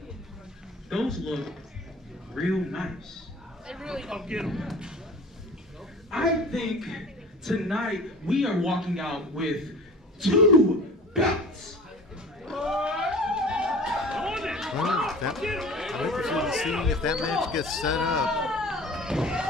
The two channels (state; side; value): normal; both; correlation 0.42